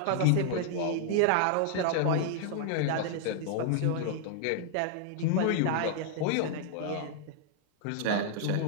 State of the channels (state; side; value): different; both; correlation -0.01